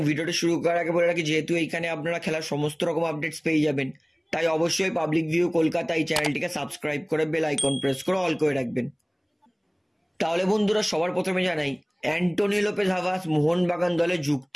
ভিডিওটা শুরু করার আগে বলে রাখি, যেহেতু এইখানে আপনারা খেলার সমস্ত রকম আপডেটস পেয়ে যাবেন, তাই অবশ্যই পাবলিক ভিউ কলকাতা এই চ্যানেলটিকে সাবস্ক্রাইব করে বেল আইকন প্রেস করে অল করে রাখবেন। তাহলে বন্ধুরা, সবার প্রথমে জানাই অ্যান্টোনি লোপেজ হাভাস মোহনবাগান দলে যুক্ত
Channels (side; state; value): both; identical; correlation 1.00